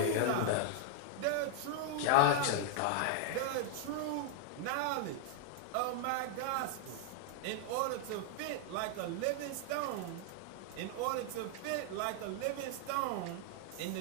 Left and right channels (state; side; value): different; both; correlation 0.00